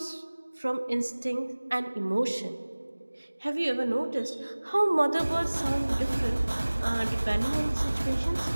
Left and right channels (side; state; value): both; inverted; correlation -1.00